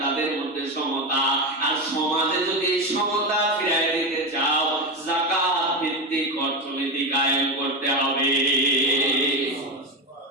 তাদের মধ্যে সমতা, আর সমাজে যদি সমতা ফিরিয়ে দিতে চাও, যাকাত ভিত্তিক অর্থনীতি কায়েম করতে হবে।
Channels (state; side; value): normal; both; correlation 0.15